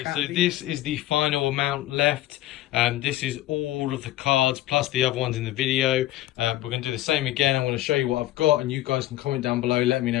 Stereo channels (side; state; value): right; quieter; 15.2 dB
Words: So this is the final amount left. This is all of the cards plus the other ones in the video. We're going to do the same again. I'm going to show you what I've got, and you guys can comment down below, let me